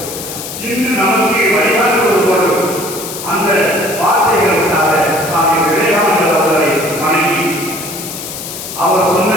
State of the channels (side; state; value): left; noise; hiss, 9 dB below the sound